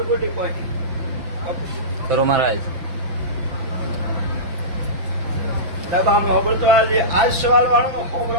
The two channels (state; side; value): late; left; 5.7 ms